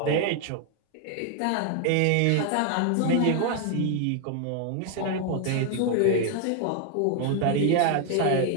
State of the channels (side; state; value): both; different; correlation 0.00